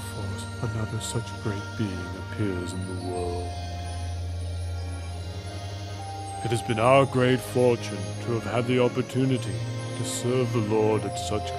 another such great being appears in the world? It has been our great fortune to have had the opportunity to serve the Lord at such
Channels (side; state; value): both; identical; correlation 1.00